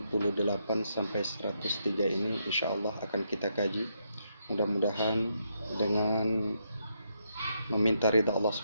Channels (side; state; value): both; inverted; correlation -0.79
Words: sampai 103 ini insya Allah akan kita kaji. Mudah-mudahan dengan meminta ridha Allah